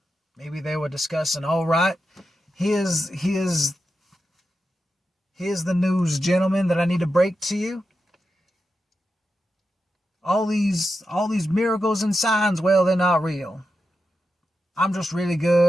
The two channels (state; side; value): normal; both; correlation 0.89